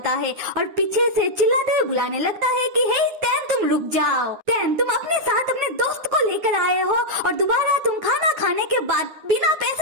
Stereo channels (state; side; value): late; left; 9.7 ms